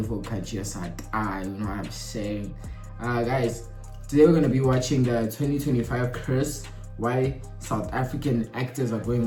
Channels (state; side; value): identical; both; correlation 1.00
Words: country of South you know what I'm saying? Guys, today we're going to be watching the 2025 curse, why South African actors are